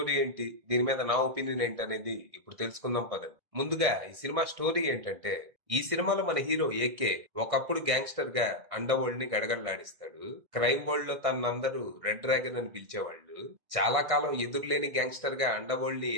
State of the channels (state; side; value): late; left; 1.6 ms